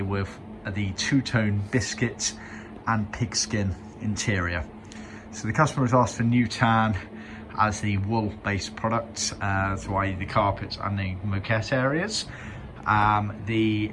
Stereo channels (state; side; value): identical; both; correlation 1.00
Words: with the two-tone biscuit and pigskin interior. So the customer has asked for new tan as the wool-based products, so i.e. the carpets and the moquette areas. The